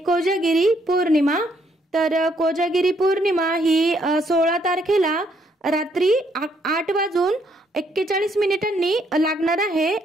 कोजागिरी पौर्णिमा। तर कोजागिरी पौर्णिमा ही 16 तारखेला रात्री 8:41 लागणार आहे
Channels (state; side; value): normal; both; correlation 0.71